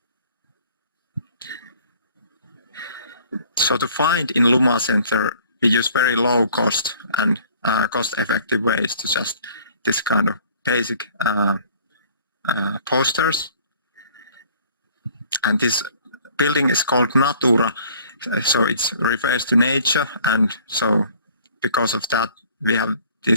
So to find in Luma Center, we use very low cost and cost-effective ways to just this kind of basic posters. And this building is called Natura, so it refers to nature, and so because of that we have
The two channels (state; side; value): inverted; both; correlation -0.54